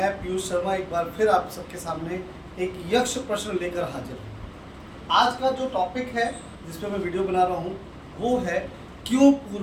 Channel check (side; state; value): both; identical; correlation 1.00